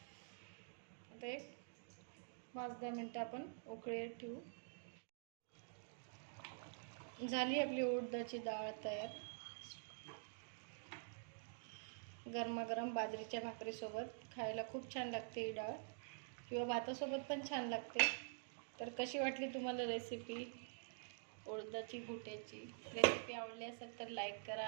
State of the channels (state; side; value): silent; left; digital silence